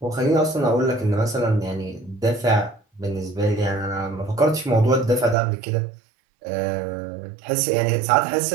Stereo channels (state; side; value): drops out; left; at 5.4 s